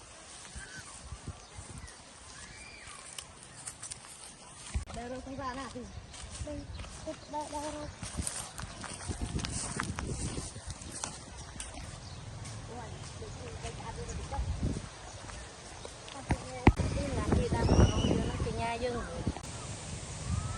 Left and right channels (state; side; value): identical; both; correlation 1.00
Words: ដើររកសំសាណាទីនេះគិតដើររកយើង